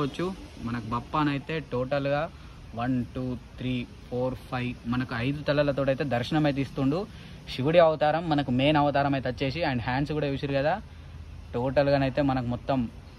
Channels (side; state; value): both; identical; correlation 1.00